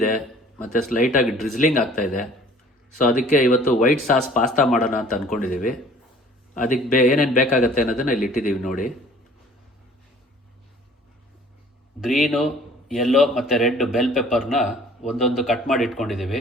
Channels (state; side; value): normal; both; correlation 0.52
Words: ಮತ್ತು ಸ್ಲೈಟಾಗಿ ಡ್ರಿಸ್ಲಿಂಗ್ ಆಗ್ತಾ ಇದೆ. ಸೊ ಅದಕ್ಕೆ ಇವತ್ತು ವೈಟ್ ಸಾಸ್ ಪಾಸ್ತಾ ಮಾಡೋಣ ಅಂತ ಅಂದ್ಕೊಂಡಿದ್ದೀವಿ. ಅದಕ್ಕೆ ಏನೇನು ಬೇಕಾಗತ್ತೆ ಅನ್ನೋದನ್ನು ಇಲ್ಲಿ ಇಟ್ಟಿದ್ದೀವಿ ನೋಡಿ. ಗ್ರೀನು, ಯೆಲ್ಲೋ ಮತ್ತು ರೆಡ್ ಬೆಲ್ ಪೆಪ್ಪರ್ನ ಒಂದೊಂದು ಕಟ್ ಮಾಡಿ ಇಟ್ಕೊಂಡಿದ್ದೀವಿ.